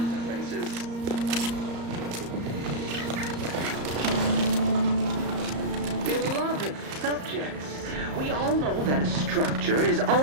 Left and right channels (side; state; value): left; late; 34 ms